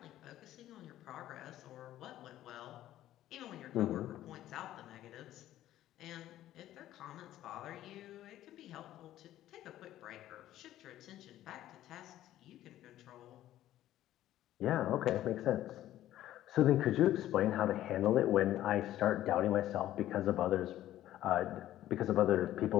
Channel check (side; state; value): right; quieter; 13.4 dB